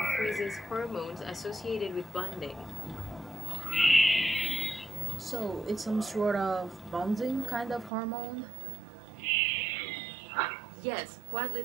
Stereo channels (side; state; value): left; drops out; at 7.9 s